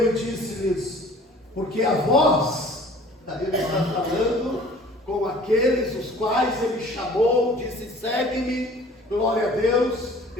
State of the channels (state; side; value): normal; both; correlation 0.49